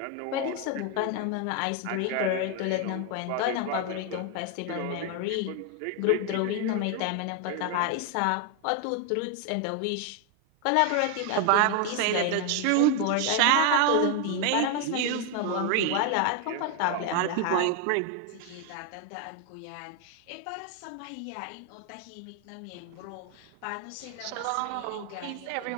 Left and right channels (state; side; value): different; both; correlation 0.01